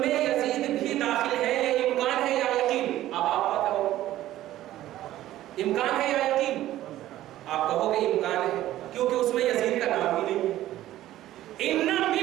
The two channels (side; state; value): left; quieter; 14.1 dB